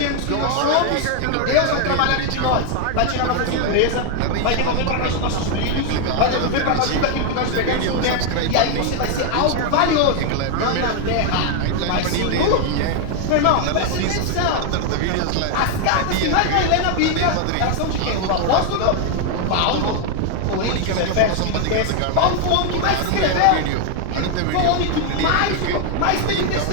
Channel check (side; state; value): both; different; correlation 0.00